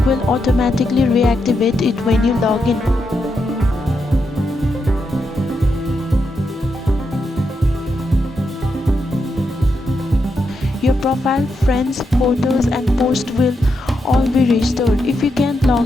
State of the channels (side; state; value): both; normal; correlation 0.83